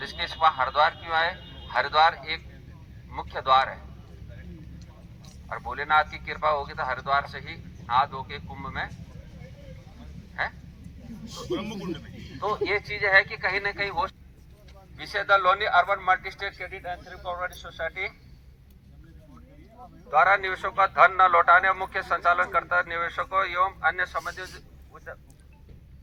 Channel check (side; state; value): both; identical; correlation 1.00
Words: वहाँ हरिद्वार क्यों आए? हरिद्वार एक मुख्य द्वार है और भोलेनाथ की कृपा होगी तो हरिद्वार से ही नहा धो के कुंभ में है तो ये चीज है कि कहीं ना कहीं वो विषय the Loni urban multi state credit and thrift cooperative society द्वारा निवेशकों का धन न लौटाने, मुख्य संचालनकर्ता निवेशकों एवं अन्य